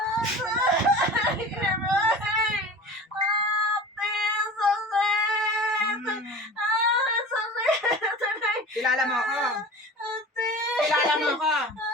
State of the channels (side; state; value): both; normal; correlation 0.37